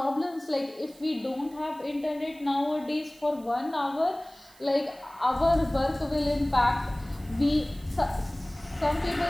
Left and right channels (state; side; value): noise; right; hiss, 26 dB below the sound